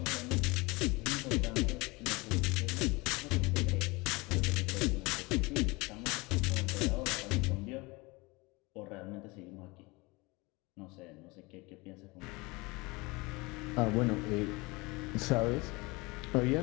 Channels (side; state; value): right; quieter; 24.7 dB